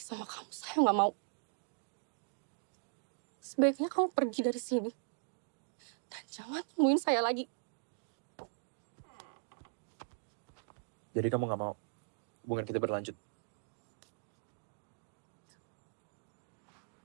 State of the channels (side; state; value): left; silent; digital silence